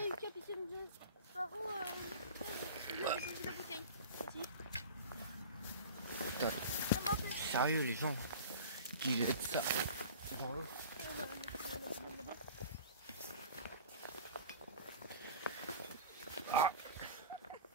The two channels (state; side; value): inverted; both; correlation -0.38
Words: a une capitaine de Sparrow. Il a posé la bouteille. Ici. Putain, Ça m'a fait. sérieux les gens qui jettent ça dans l'eau. On va la mettre là-bas.